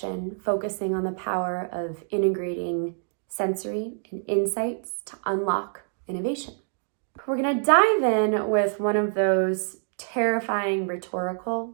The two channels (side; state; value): left; silent; digital silence